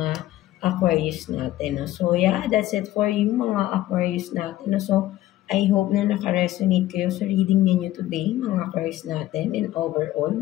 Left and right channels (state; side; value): quieter; right; 14.8 dB